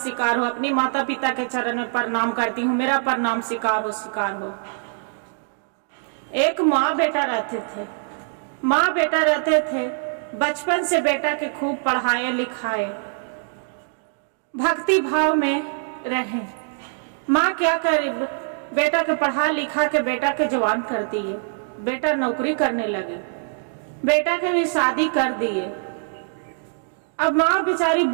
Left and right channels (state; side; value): silent; left; digital silence